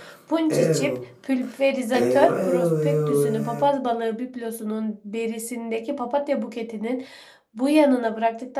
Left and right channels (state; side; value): identical; both; correlation 1.00